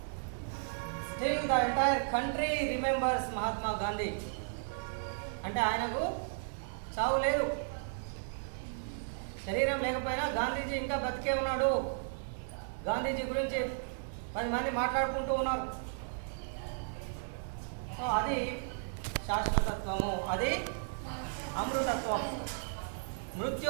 still the entire country remembers Mahatma Gandhi. అంటే ఆయనకు చావు లేదు. శరీరం లేకపోయినా గాంధీజీ ఇంకా బతికే ఉన్నాడు. గాంధీజీ గురించి 10 మంది మాట్లాడుకుంటూ ఉన్నారు. సో అది శాశ్వతత్వము, అది అమృతత్వం.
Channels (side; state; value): left; silent; digital silence